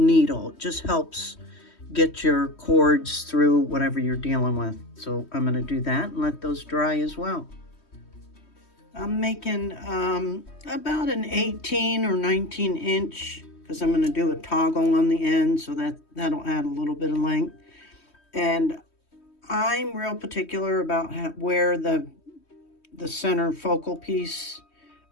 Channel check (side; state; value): right; late; 3.1 ms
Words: It just helps get your cords through whatever you're dealing with. So I'm going to do that and let those dry as well. I'm making about an 18 or 19 inch, because I'm going to do a toggle on the end, so that'll add a little bit of length. And I'm real particular about where the center focal piece